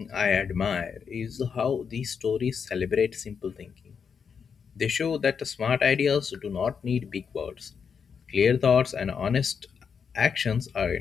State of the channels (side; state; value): right; quieter; 6.4 dB